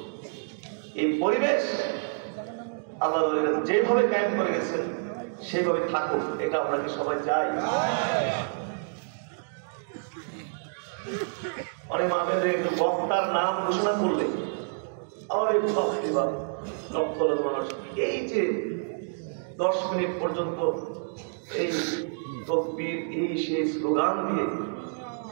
এই পরিবেশ আল্লাহর ওলিরা যেভাবে কায়েম করে গেছেন সেভাবে থাকুক, এটা আমরা কি সবাই চাই? অনেক মাহফিলে একটু বক্তার নাম ঘোষণা করলে লক্ষ লক্ষ মানুষ এই যে 10 মিনিট পর্যন্ত এই তকবীর, এই সেই স্লোগান দিয়ে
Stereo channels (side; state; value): left; silent; digital silence